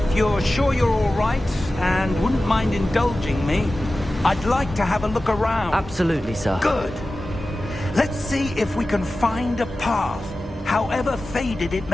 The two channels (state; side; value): normal; both; correlation 0.95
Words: you're sure you're all right, and wouldn't mind indulging me, I'd like to have a look around. Absolutely, sir. Good. Let's see if we can find a path, however faded it